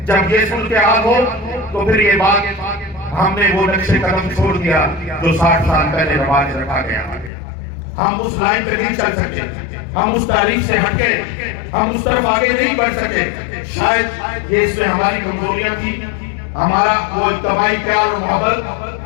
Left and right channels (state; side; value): drops out; right; at 7.3 s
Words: جب یہ صورتحال ہو تو پھر یہ بات ہم نے وہ نقش قدم چھوڑ دیا جو 60 سال پہلے رواج رکھا گیا۔ ہم اس لائن پہ نہیں چل سکے، ہم اس تاریخ سے ہٹ کے ہم اس طرف آگے نہیں بڑھ سکے. شاید یہ اس میں ہماری کمزوریاں تھی، ہمارا وہ اجتماعی پیار اور